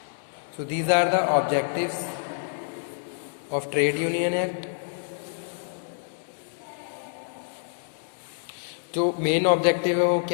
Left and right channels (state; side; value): silent; right; digital silence